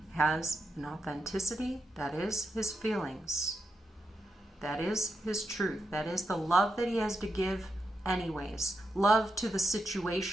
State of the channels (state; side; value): normal; both; correlation 0.85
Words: has an authenticity that is his feelings. That is his truth. That is the love that he has to give anyways. Love to the